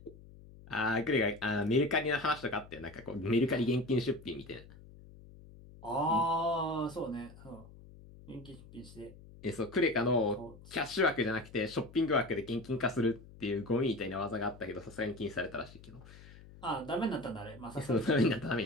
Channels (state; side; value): noise; left; hum, 19 dB below the sound